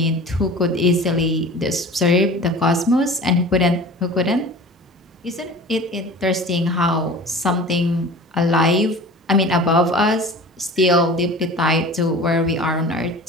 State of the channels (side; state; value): both; normal; correlation 0.40